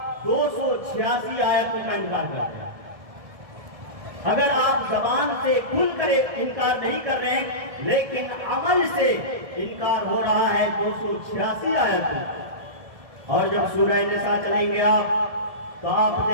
286 آیتوں کا انکار کرتے ہیں۔ اگر آپ زبان سے کھل کر انکار نہیں کر رہے ہیں لیکن عمل سے انکار ہو رہا ہے 286 آیتوں۔ اور جب سورہ نساء چلیں گے آپ تو آپ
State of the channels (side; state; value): left; late; 1.7 ms